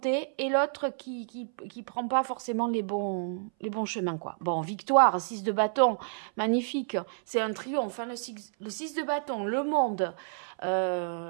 et l'autre qui prend pas forcément les bons chemins, quoi. Bon, victoire, 6 de bâton, magnifique. C'est un triomphe, hein, le 6 de bâton, le monde.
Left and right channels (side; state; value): left; silent; 58 dB below the other